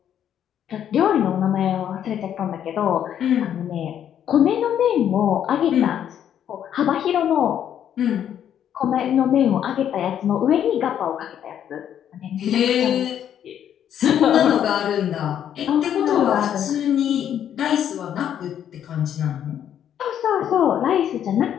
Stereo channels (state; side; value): quieter; right; 9.8 dB